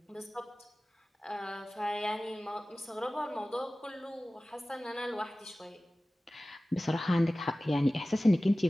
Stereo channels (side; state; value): both; normal; correlation 0.97